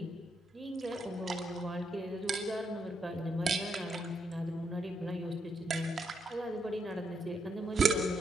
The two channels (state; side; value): normal; both; correlation 0.78